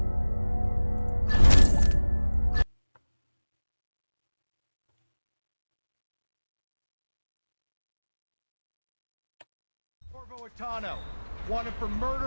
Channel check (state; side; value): inverted; both; correlation -1.00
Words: Corvo Atano, wanted for